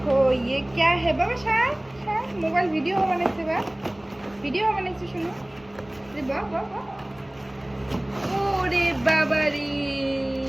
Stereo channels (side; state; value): right; noise; rumble, 29 dB below the sound